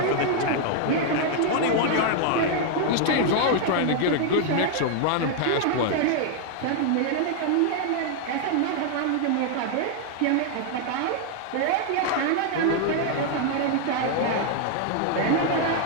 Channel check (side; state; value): both; different; correlation 0.00